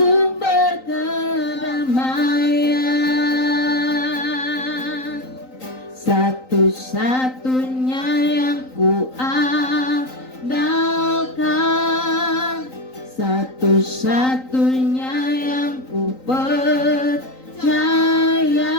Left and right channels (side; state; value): right; late; 3.9 ms